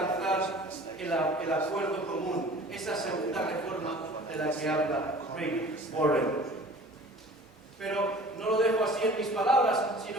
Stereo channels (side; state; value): both; normal; correlation 0.45